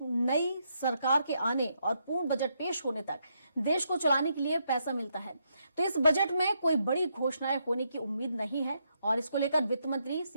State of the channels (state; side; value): inverted; both; correlation -0.78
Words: नई सरकार के आने और पूर्ण बजट पेश होने तक देश को चलाने के लिए पैसा मिलता है। तो इस बजट में कोई बड़ी घोषणाएं होने की उम्मीद नहीं है और इसको लेकर वित्त मंत्री